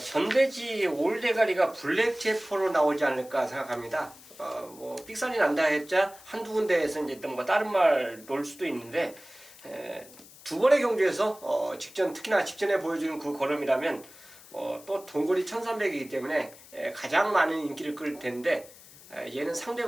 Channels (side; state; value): left; noise; hiss, 21 dB below the sound